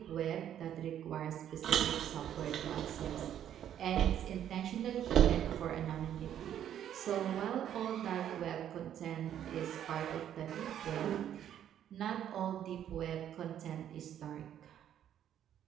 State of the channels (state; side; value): quieter; left; 10.4 dB